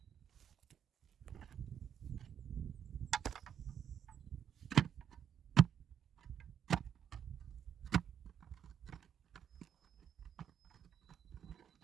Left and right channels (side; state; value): left; quieter; 8.7 dB